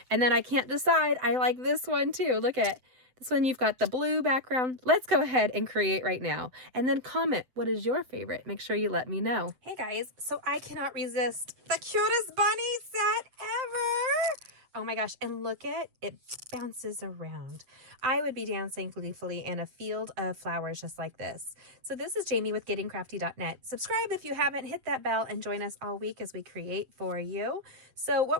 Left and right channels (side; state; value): left; late; 7.9 ms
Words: And then I can't decide. I like this one too. Look at this one. You've got the blue background. Let's go ahead and create right now. And then comment, what is your favorite? Make sure you let me know. Hey guys, so I cannot resist the cutest bunny set ever. Oh my gosh, and look at it, bounces around. I would be dancing gleefully in a field of flowers just like this. So this is Jamie with GettingCrafty.net. Subscribe if you haven't, hit that bell, and join us all week as we create for you. So